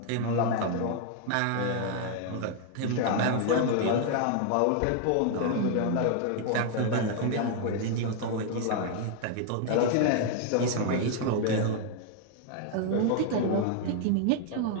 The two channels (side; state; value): both; different; correlation 0.00